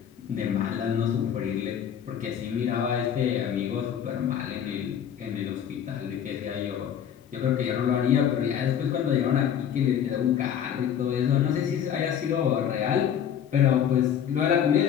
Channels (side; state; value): right; quieter; 9.0 dB